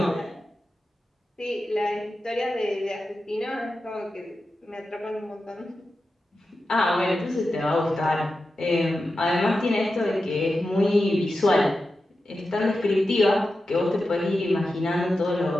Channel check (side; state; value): both; normal; correlation 0.91